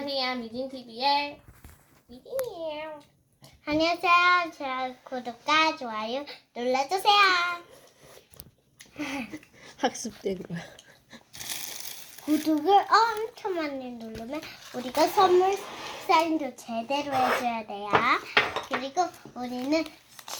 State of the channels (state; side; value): identical; both; correlation 1.00